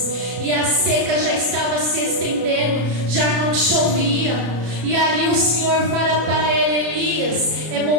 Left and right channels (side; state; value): left; late; 33 ms